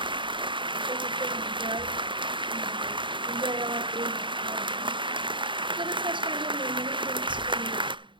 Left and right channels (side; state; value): left; late; 0.23 ms